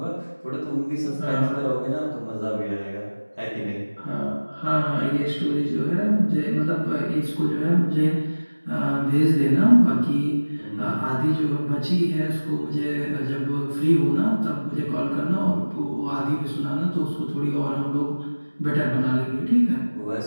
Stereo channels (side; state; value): both; inverted; correlation -1.00